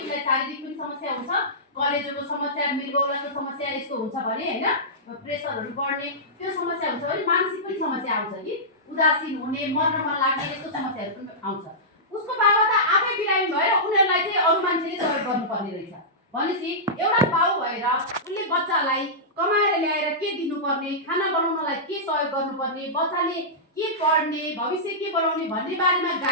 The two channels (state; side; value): normal; both; correlation -0.15